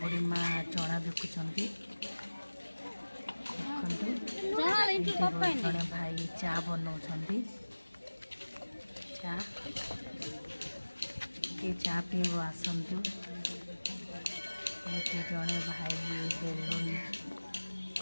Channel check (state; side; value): inverted; both; correlation -1.00